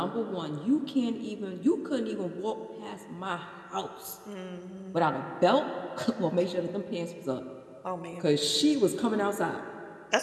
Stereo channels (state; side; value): identical; both; correlation 1.00